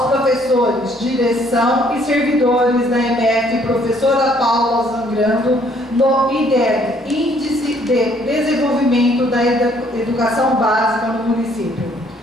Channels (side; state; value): both; normal; correlation 0.64